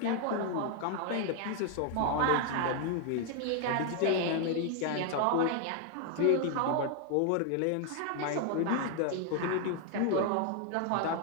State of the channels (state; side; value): different; both; correlation 0.00